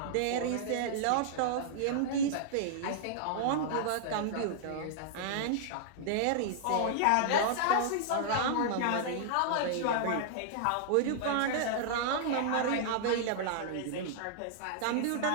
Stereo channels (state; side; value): different; both; correlation -0.01